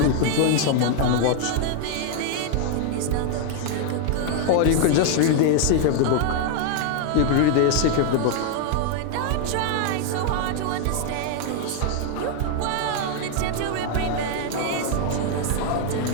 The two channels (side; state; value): both; different; correlation 0.00